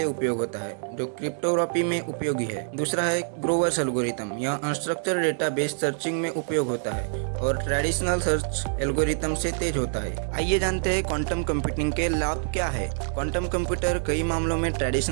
उपयोग होता है जो क्रिप्टोग्राफी में उपयोगी है। दूसरा है ग्रोवर्स एल्गोरिथम, यह अनस्ट्रक्चर्ड डेटाबेस सर्चिंग में उपयोग होता है और ट्रेडिशनल सर्च एल्गोरिथम से तेज होता है। आइए जानते हैं क्वांटम कंप्यूटिंग के लाभ क्या है। क्वांटम कंप्यूटर कई मामलों में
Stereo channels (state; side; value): silent; left; 61 dB below the other